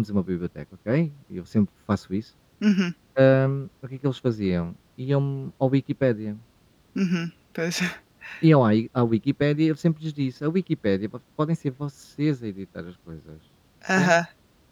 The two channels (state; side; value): identical; both; correlation 1.00